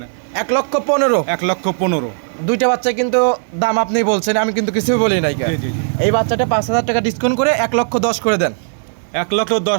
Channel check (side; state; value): left; silent; digital silence